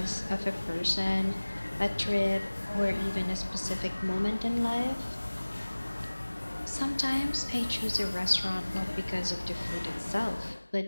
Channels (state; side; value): inverted; both; correlation -1.00